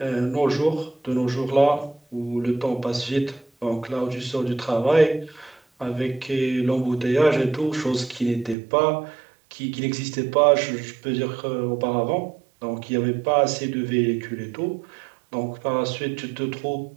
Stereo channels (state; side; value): drops out; left; at 8.6 s